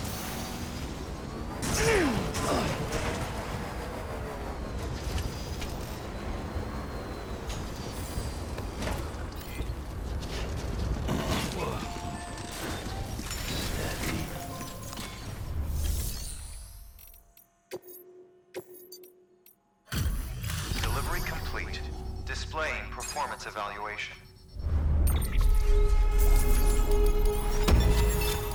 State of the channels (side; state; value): both; identical; correlation 1.00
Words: Delivery complete. Displaying performance evaluation.